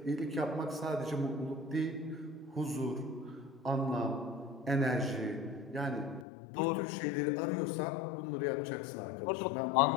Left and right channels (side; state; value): right; drops out; at 6.2 s